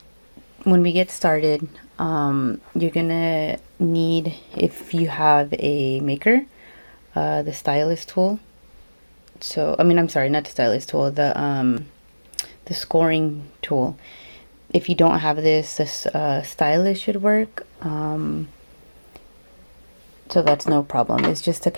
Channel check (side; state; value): both; inverted; correlation -1.00